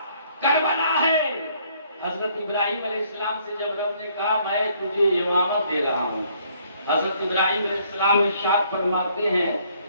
کربلا ہے۔ حضرت ابراہیم علیہ السلام سے جب رب نے کہا میں تجھے امامت دے رہا ہوں، حضرت ابراہیم علیہ السلام ارشاد فرماتے ہیں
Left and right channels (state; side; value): inverted; both; correlation -0.65